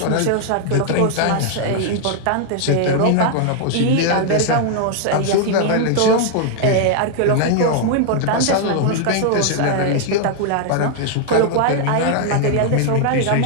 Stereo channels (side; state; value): both; different; correlation 0.00